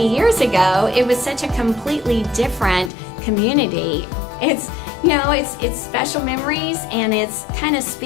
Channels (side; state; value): right; drops out; at 2.9 s